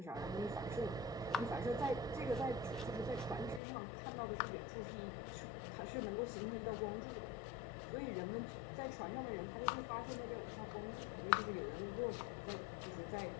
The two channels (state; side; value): drops out; right; at 3.6 s